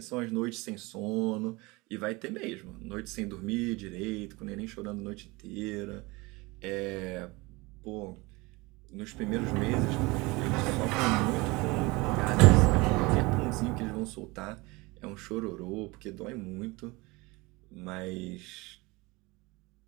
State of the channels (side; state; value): left; quieter; 23.8 dB